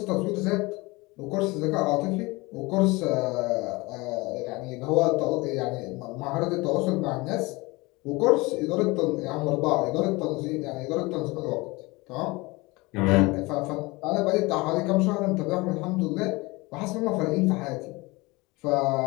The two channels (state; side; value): quieter; right; 23.5 dB